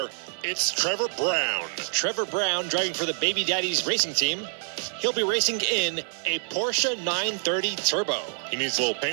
it's Trevor Brown. Trevor Brown driving for the Baby Daddies Racing Team. He'll be racing in a Porsche 930 Turbo. He needs a little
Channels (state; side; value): silent; left; digital silence